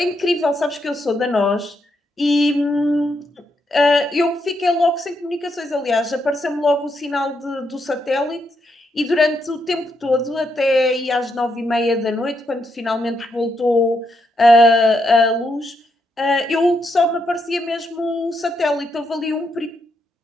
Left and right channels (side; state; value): both; normal; correlation 0.79